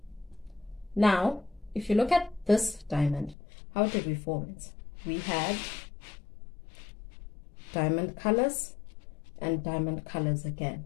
now if you look at this diamond, how did we form it? We had diamond colors and diamond colors again,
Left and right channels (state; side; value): drops out; right; at 3.4 s